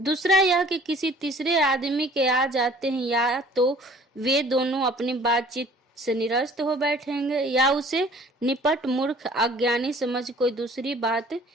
यह कि किसी तीसरे आदमी के आ जाते हैं या तो वे दोनों अपनी बातचीत से निरस्त हो बैठेंगे या उसे निपट मूर्ख अज्ञानी समझ कोई दूसरी बात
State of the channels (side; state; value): both; normal; correlation 0.52